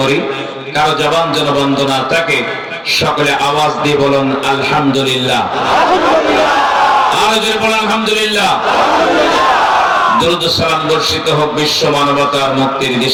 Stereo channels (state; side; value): identical; both; correlation 1.00